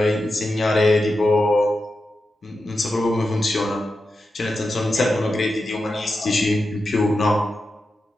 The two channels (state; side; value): normal; both; correlation 0.90